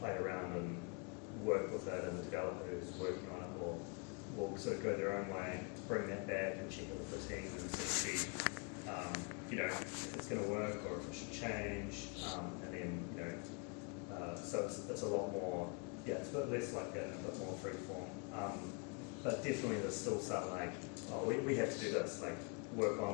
around and work with it, and the developer who's working on it will sort of go their own way, bring that back and check it with the team and sort of see if it's going to work or if it should change, and then so it's a lot more. Yeah, it's a bit less like that, a bit more free form. But definitely there's still some like, we have to do this, like work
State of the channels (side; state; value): right; quieter; 35.1 dB